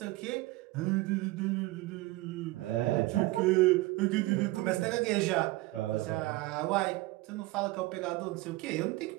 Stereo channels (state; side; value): quieter; left; 20.0 dB